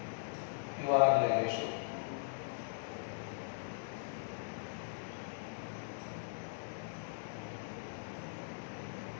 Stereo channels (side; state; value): right; silent; digital silence